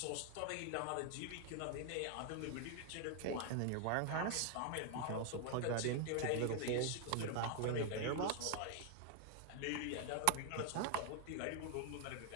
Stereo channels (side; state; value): both; different; correlation 0.00